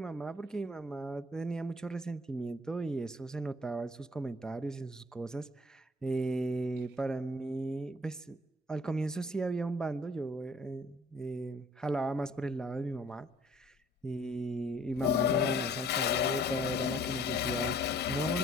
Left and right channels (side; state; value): both; normal; correlation 0.56